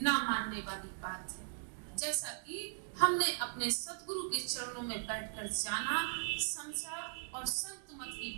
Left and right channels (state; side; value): silent; left; digital silence